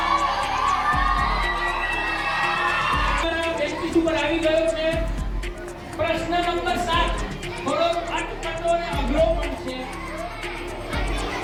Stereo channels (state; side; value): identical; both; correlation 1.00